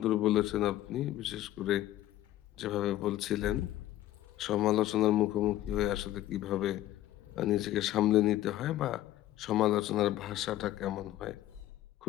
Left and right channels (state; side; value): quieter; right; 14.1 dB